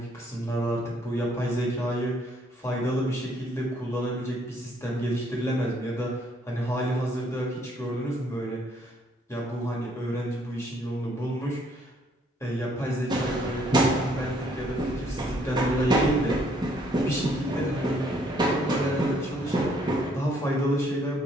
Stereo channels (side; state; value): both; normal; correlation 0.66